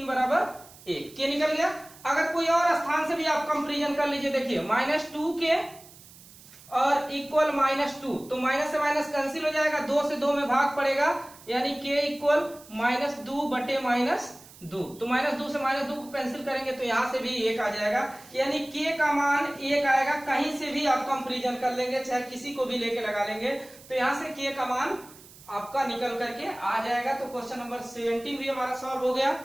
= 1, k निकल गया। अगर कोई और स्थान से भी आप कंपेरिजन कर लीजिए, देखिए -2k और इक्वल -2, तो माइनस से माइनस कैंसिल हो जाएगा, 2 से 2 में भाग पड़ेगा, यानी k इक्वल -2/-2, तो -2 से -2 को कैंसिल करेंगे तो यहां से भी 1 आ जाएगा, यानी k का मान 1 आएगा। कहीं से भी आप कंपेरिजन कर लेंगे, चाहे किसी को भी लेके लगा लेंगे, तो यहां से k का मान आपका निकल करके आ जाएगा। तो क्वेश्चन नंबर 17 भी हमारा सॉल्व हो गया।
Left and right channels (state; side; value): noise; right; hiss, 21 dB below the sound